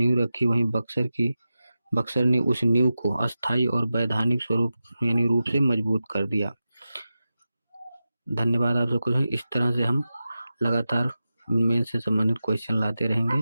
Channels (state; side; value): inverted; both; correlation -0.92